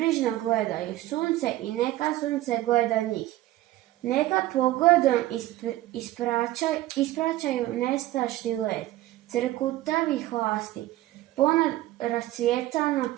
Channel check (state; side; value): quieter; left; 15.9 dB